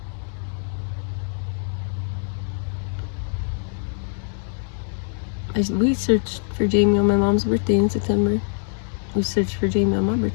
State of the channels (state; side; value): silent; right; 63 dB below the other